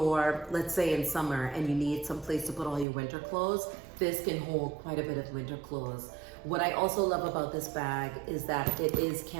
let's say in summer, and you need some place to put all your winter clothes, this can hold quite a bit of winter clothes. What I also love about this bag is that it is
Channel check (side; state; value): left; drops out; at 2.9 s